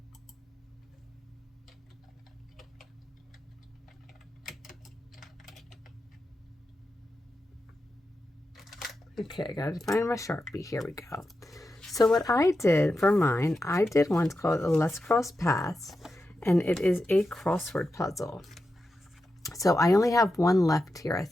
Okay, I gotta find my Sharpie. Here we go. So what I did for mine, I did one called Let's Cross Paths, and it is a crossword puzzle. So I only have one left here, I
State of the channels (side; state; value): both; normal; correlation 0.89